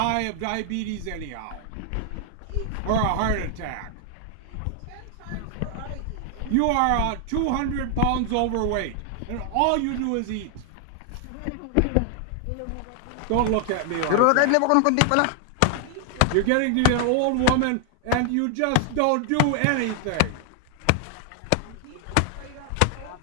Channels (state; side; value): different; both; correlation 0.00